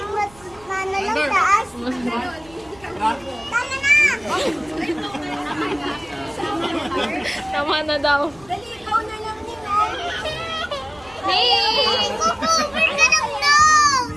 mas ano lang taas. Tama na! Tama na daw. Dali, ikaw na lang nila. Hey! Cover ka ng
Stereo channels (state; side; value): noise; right; rumble, 26 dB below the sound